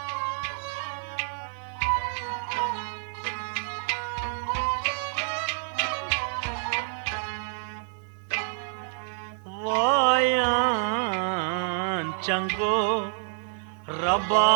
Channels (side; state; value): left; silent; 59 dB below the other